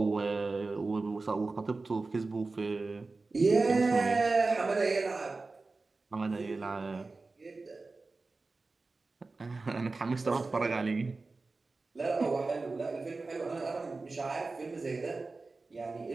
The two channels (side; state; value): left; quieter; 3.7 dB